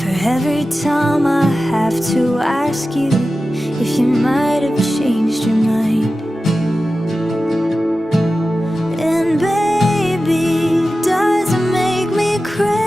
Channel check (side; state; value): both; normal; correlation 0.94